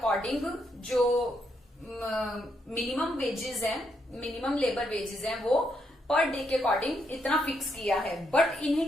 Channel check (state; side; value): normal; both; correlation 0.78